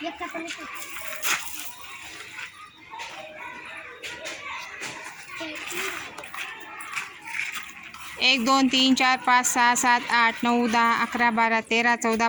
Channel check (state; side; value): identical; both; correlation 1.00